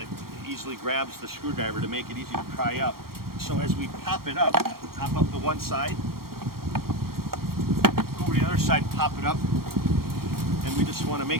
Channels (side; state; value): left; late; 0.93 ms